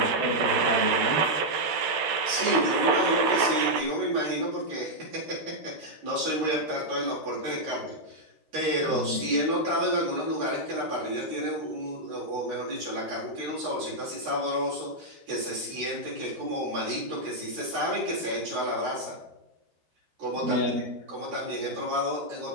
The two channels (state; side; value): late; left; 13 ms